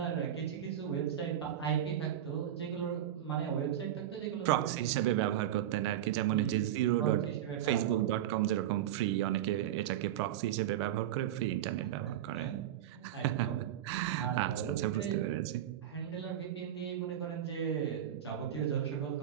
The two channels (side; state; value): left; quieter; 11.3 dB